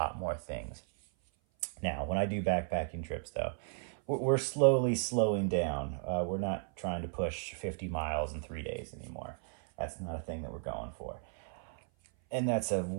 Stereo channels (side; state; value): left; silent; 55 dB below the other